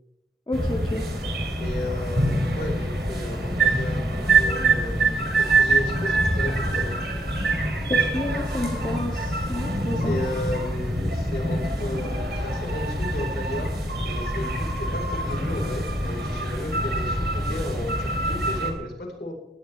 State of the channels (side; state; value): both; normal; correlation 0.74